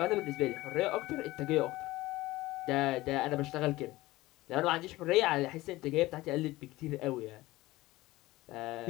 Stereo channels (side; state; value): right; quieter; 18.6 dB